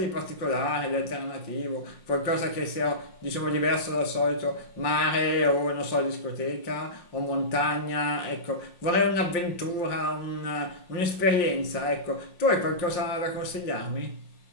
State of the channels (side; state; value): right; late; 5.6 ms